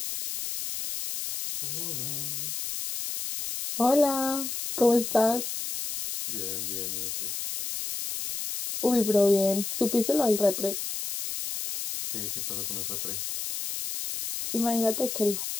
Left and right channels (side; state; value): left; noise; hiss, 5 dB below the sound